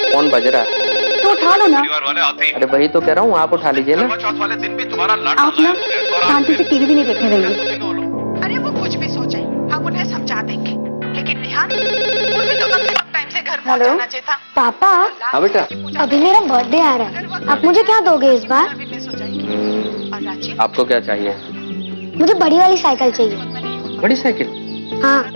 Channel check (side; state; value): both; inverted; correlation -1.00